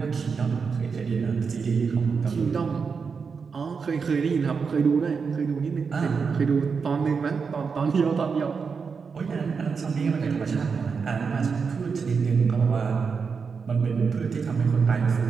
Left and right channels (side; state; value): left; quieter; 5.5 dB